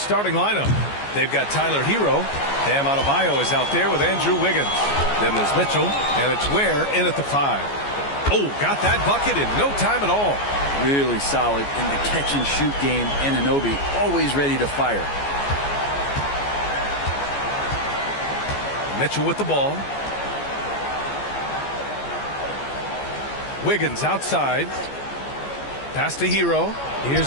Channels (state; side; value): late; right; 14 ms